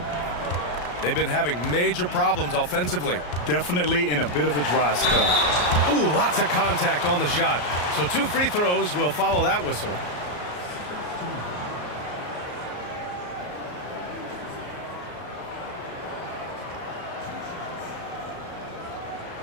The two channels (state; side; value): late; right; 34 ms